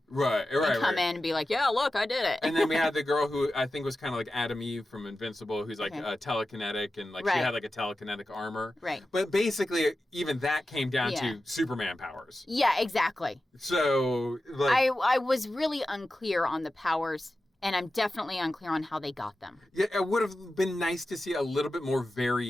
Right. And come in and be like, yeah, look, I did it. And then we had the girl who I think was kind of like Adam Eve from Invincible, who's like telekinetic, and like she had like a telekinetic armor. Right. But basically, even that came down to Superman powers. Yeah, exactly. So like, I was really unclear on the powers. And I'm definitely unclear on how they got them. Yeah, it would have been nice to see a little bit more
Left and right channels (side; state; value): both; normal; correlation 0.93